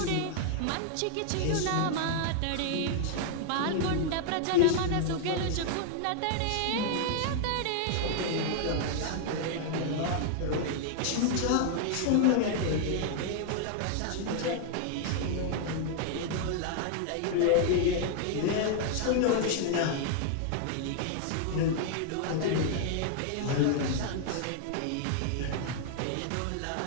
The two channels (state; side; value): different; both; correlation 0.00